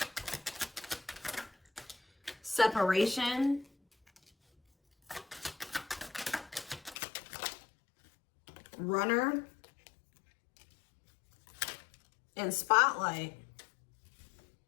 Separation. Runner. And spotlight.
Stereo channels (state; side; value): drops out; right; at 7.0 s